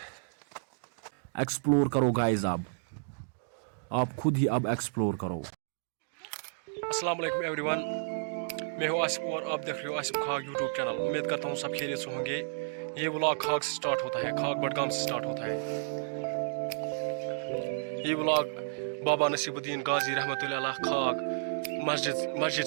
Explore करो गाइस। अब आप खुद ही अब एक्सप्लोर करो। अस्सलाम वालेकुम एवरीवन, मैं हूँ आसिफ और आप देख रहे हो आसिफ खाग यूट्यूब चैनल। उम्मीद करता हूँ सब खैरियत से होंगे। ये व्लॉग खाग से स्टार्ट होता है, खाग बडगाम से स्टार्ट होता है। ये व्लॉग बाबा नसीबुद्दीन गाजी रहमतुल्लाह अलैह खाग मस्जिद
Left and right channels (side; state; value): left; silent; digital silence